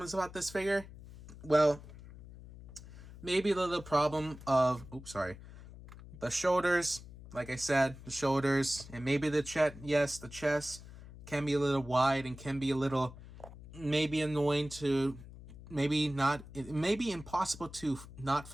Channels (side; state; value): left; noise; hum, 16 dB below the sound